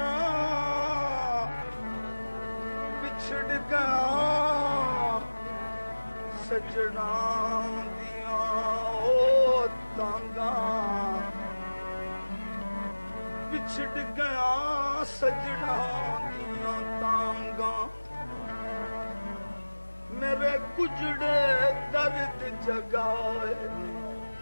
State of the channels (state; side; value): inverted; both; correlation -1.00